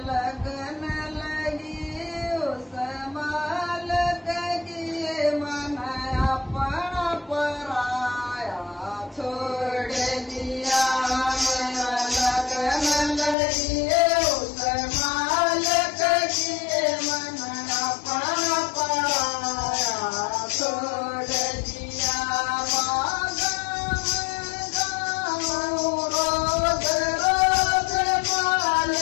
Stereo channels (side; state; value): right; drops out; at 13.4 s